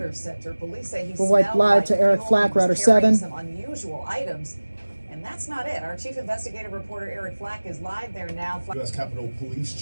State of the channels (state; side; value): inverted; both; correlation -1.00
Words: Center. Police say he We'll wipe smelled live like to Eric fuel. Flack, He was Router carrying 7. some unusual items. And that's not it. Our chief investigative reporter, Eric Flack, is live there now. U.S. Capitol Police